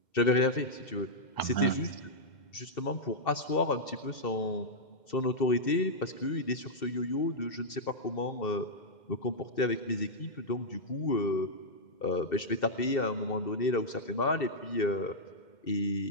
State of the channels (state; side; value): late; right; 2.7 ms